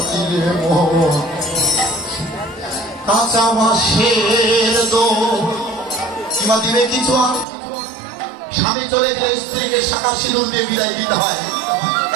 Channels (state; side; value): drops out; left; at 7.5 s